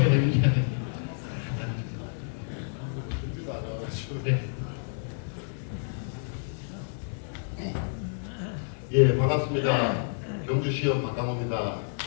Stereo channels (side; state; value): right; silent; digital silence